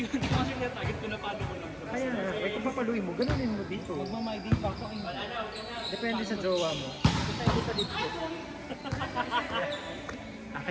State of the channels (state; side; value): identical; both; correlation 1.00